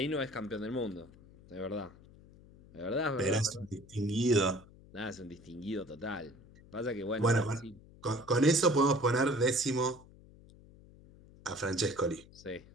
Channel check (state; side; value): noise; left; hum, 23 dB below the sound